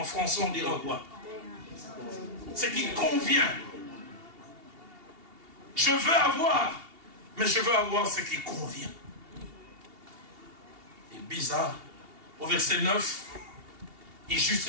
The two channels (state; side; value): late; left; 2.8 ms